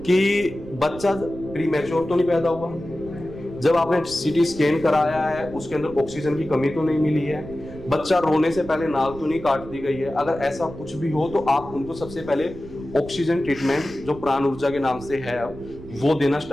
कि बच्चा प्रीमैच्योर तो नहीं पैदा हुआ, जब आपने सीटी स्कैन कराया है उसके अंदर ऑक्सीजन की कमी तो नहीं मिली है, बच्चा रोने से पहले नाल तो नहीं काट दी गई है। अगर ऐसा कुछ भी हो तो आप उनको सबसे पहले ऑक्सीजन ट्रीटमेंट जो प्राण ऊर्जा के नाम से है वो देना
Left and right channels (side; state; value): right; noise; rumble, 16 dB below the sound